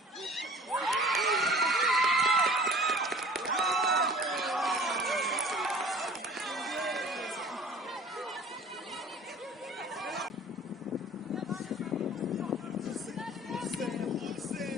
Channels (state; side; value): normal; both; correlation 0.46